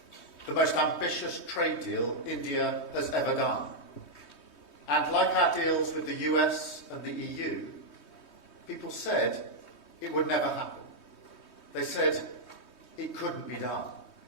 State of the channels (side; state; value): right; late; 3.2 ms